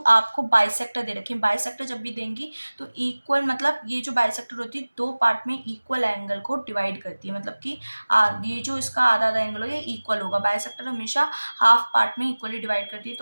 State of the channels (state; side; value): inverted; both; correlation -1.00